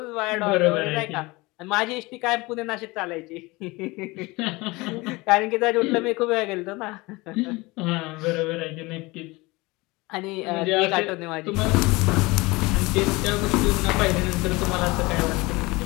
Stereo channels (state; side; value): quieter; right; 23.0 dB